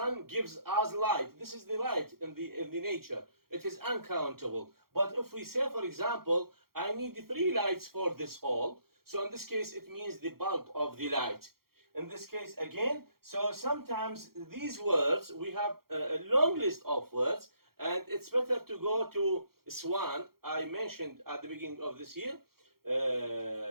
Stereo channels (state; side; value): late; left; 0.94 ms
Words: gives us light, this is the light in the nature. It is uncountable. But if we say, for example, I need 3 lights for this hall, so in this case it means the bulb of the light. In this case again, so sometimes these words, we have a long list of words, and it's better to go to Swan. I mentioned at the beginning of this year,